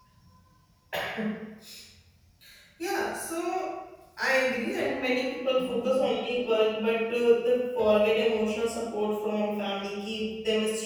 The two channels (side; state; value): both; identical; correlation 1.00